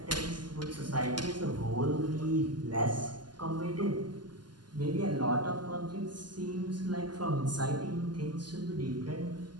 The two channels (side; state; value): left; late; 0.71 ms